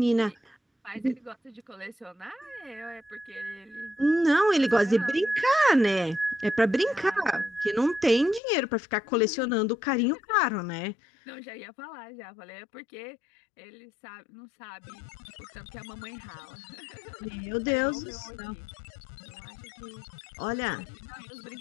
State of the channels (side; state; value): right; drops out; at 8.4 s